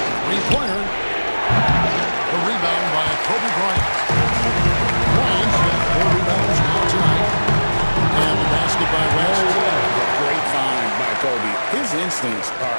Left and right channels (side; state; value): both; inverted; correlation -1.00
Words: Three-pointer. A rebound by Kobe Bryant. Bryant's got 4 rebounds now tonight. And the basket by West. Great find by Kobe. His instincts